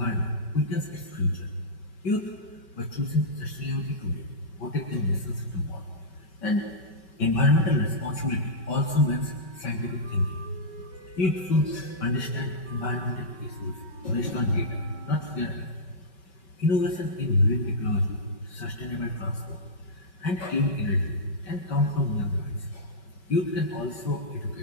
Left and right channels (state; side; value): late; right; 5.3 ms